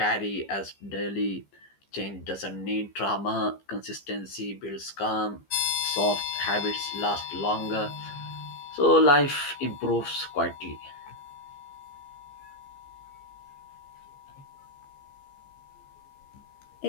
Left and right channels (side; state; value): right; late; 15 ms